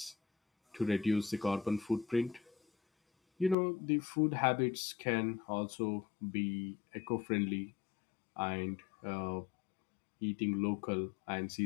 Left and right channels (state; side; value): drops out; right; at 3.6 s